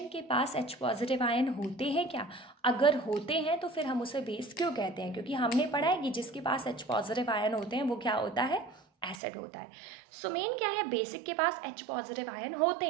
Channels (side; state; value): left; drops out; at 9.2 s